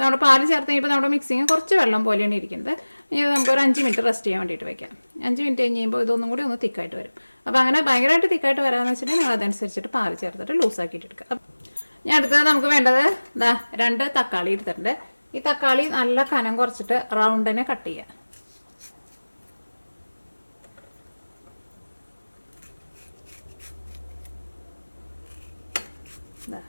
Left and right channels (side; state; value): both; inverted; correlation -1.00